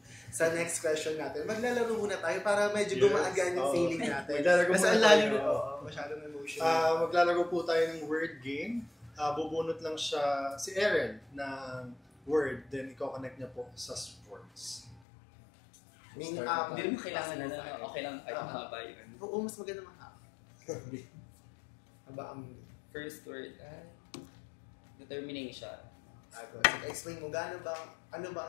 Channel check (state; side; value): drops out; right; at 15.0 s